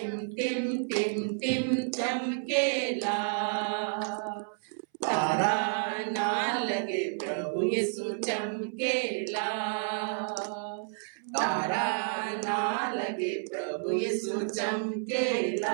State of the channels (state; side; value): silent; left; 57 dB below the other